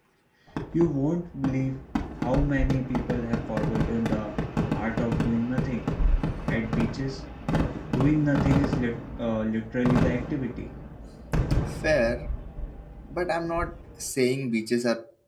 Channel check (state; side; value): identical; both; correlation 1.00